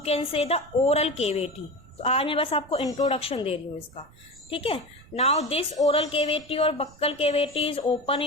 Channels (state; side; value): noise; right; rumble, 25 dB below the sound